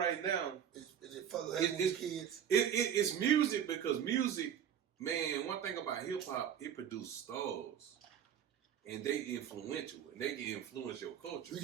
now is it fucking with kids? It's music because music, man. One thing about hip hop, it produces stars, and they influential, and they can influence your culture.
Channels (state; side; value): quieter; left; 8.9 dB